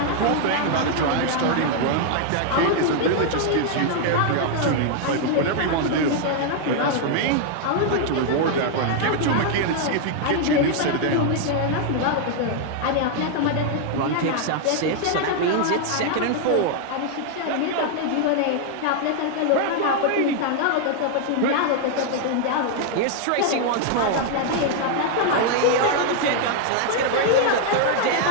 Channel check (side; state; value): both; different; correlation 0.00